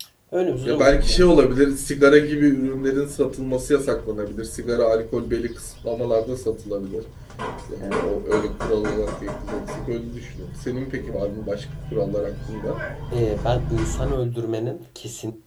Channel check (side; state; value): both; identical; correlation 1.00